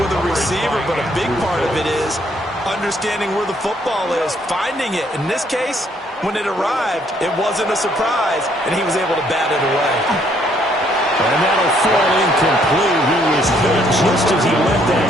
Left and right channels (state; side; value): normal; both; correlation 0.67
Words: with a receiver, but a big part of it is understanding where the football is, finding it. In this case, when it arrived, it wasn't a surprise, and he was able to bat it away. And that'll fall incomplete. He was hit just as he let that